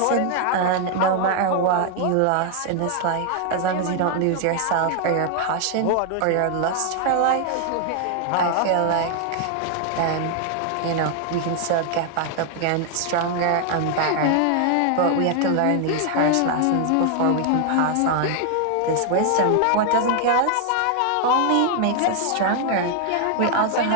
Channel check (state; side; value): different; both; correlation 0.00